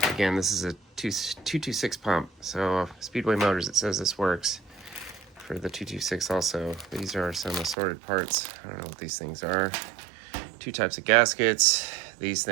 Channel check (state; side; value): drops out; left; at 7.8 s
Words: Again, this is a 226 pump. So Speedway Motors, it says this works for the 226 also. These are some assorted parts. I don't know what these things are. Two types of gaskets, these